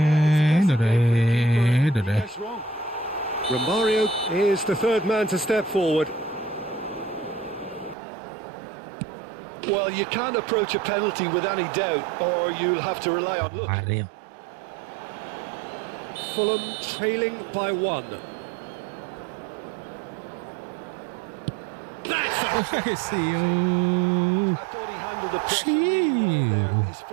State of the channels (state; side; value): drops out; left; at 8.0 s